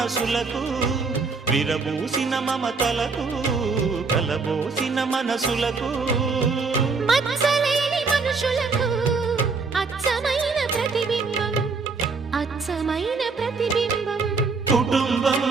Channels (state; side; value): quieter; left; 4.5 dB